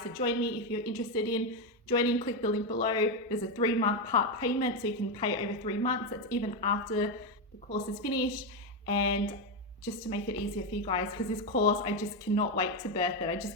to join me. If you're interested in joining, click the link below. There's a 3-month part payment, so you can pay over 3 months. That's even after the course is finished. And just to make it easier for you guys, because this course, I just cannot wait to birth it. I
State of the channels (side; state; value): both; normal; correlation 0.08